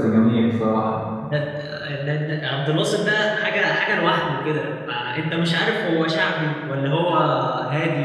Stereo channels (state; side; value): identical; both; correlation 1.00